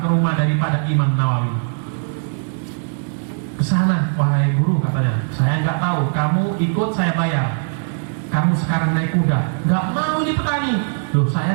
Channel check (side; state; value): left; silent; digital silence